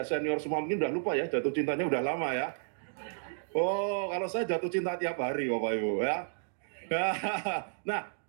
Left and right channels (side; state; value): left; silent; digital silence